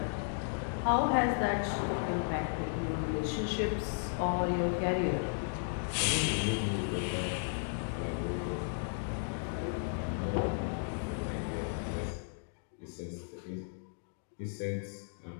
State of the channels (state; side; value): silent; right; digital silence